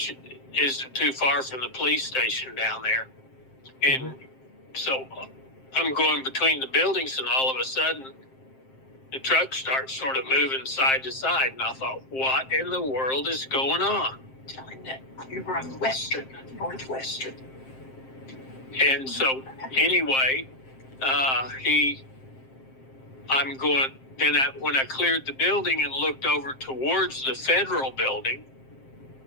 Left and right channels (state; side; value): late; right; 7.6 ms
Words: isn't too far from the police station down there. And so I'm going between the buildings, and all of a sudden, the truck starts sort of moving side to side. And I thought, what in the world is going on? Tell him that you were on Northwestern. And so anyway, I'm going, then when I cleared the building and looked over towards the federal building,